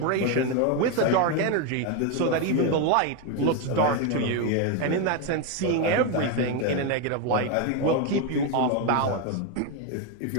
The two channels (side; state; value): both; different; correlation 0.02